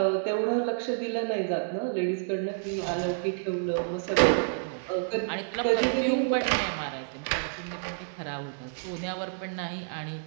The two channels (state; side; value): silent; left; digital silence